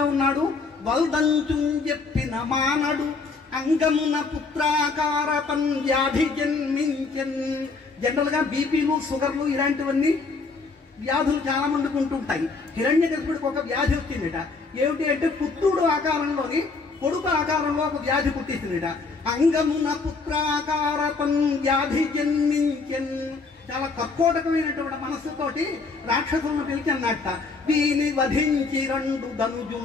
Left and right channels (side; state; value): right; quieter; 4.2 dB